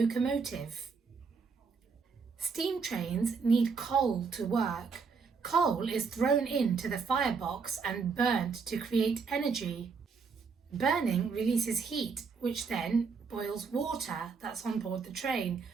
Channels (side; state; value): left; quieter; 5.2 dB